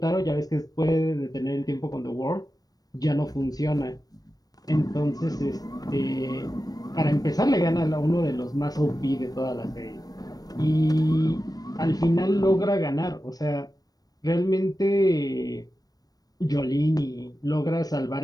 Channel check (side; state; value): right; late; 0.18 ms